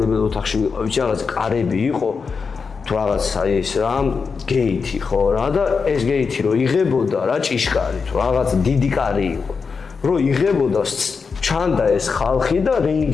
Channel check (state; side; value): quieter; right; 5.2 dB